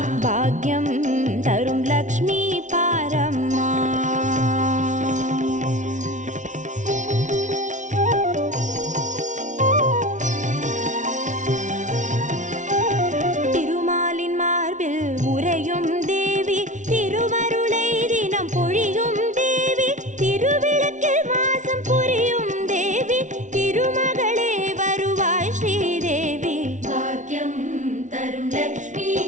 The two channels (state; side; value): late; left; 0.36 ms